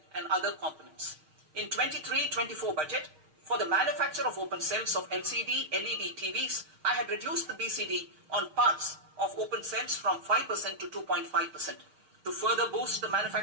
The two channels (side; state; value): left; late; 6.4 ms